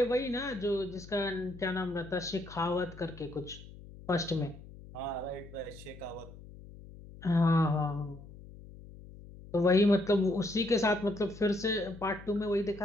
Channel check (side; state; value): left; noise; hum, 17 dB below the sound